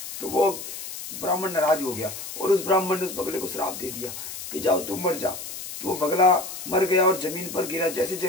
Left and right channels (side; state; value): left; noise; hiss, 9 dB below the sound